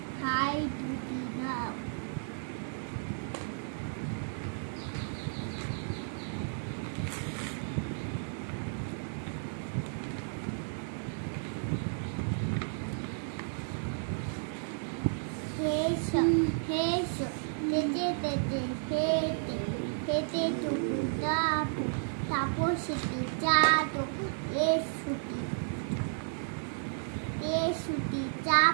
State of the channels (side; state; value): left; silent; digital silence